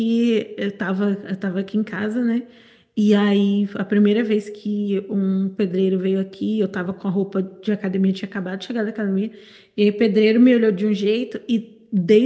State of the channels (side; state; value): both; identical; correlation 1.00